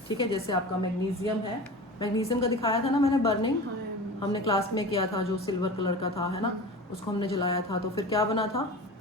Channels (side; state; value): both; normal; correlation 0.33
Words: ठीक है, जैसे आपका मैग्नीशियम है, मैग्नीशियम का दिखाया था ना मैंने बर्निंग, हमने क्लास में किया था, जो सिल्वर कलर का था, है ना, उसको हमने जलाया था, तो फिर क्या बना था,